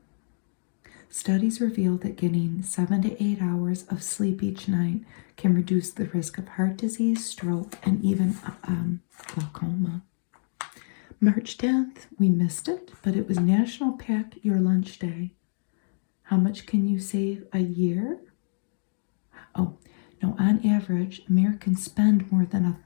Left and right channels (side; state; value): right; silent; digital silence